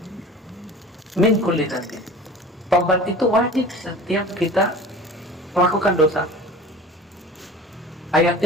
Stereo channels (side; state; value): both; normal; correlation 0.40